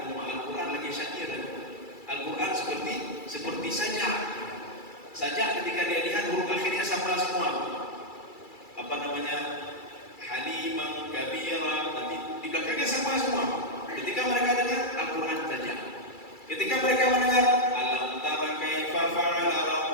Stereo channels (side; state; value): right; late; 2.3 ms